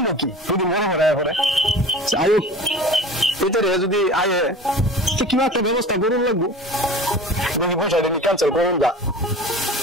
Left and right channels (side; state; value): both; normal; correlation 0.38